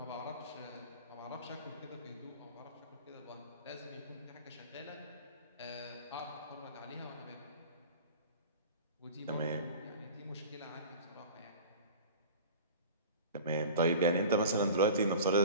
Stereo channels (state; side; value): inverted; both; correlation -0.38